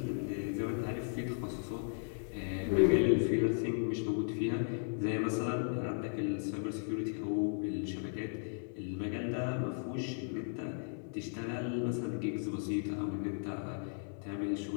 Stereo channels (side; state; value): right; silent; digital silence